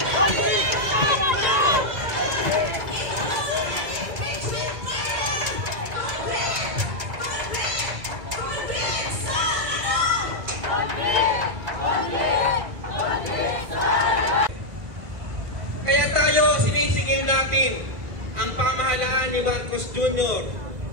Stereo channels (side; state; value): left; late; 2.2 ms